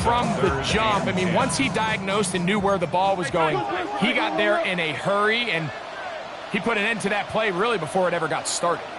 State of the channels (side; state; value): both; identical; correlation 1.00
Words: from the jump. I mean, once he diagnosed and knew where the ball was going, he got there in a hurry, and he put an end to that play really before it ever got started.